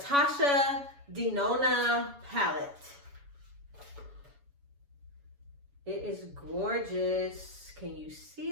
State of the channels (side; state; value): left; late; 7.1 ms